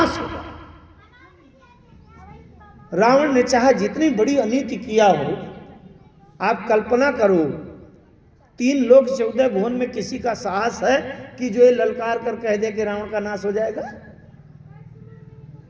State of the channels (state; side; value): identical; both; correlation 1.00